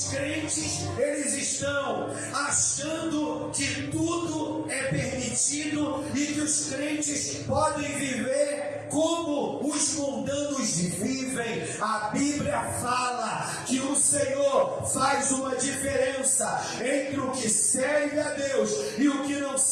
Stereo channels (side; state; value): both; identical; correlation 1.00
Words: crentes, eles estão achando que tudo é permitido e que os crentes podem viver como os mundanos vivem. A Bíblia fala que o Senhor faz uma diferença entre o que serve a Deus e o que não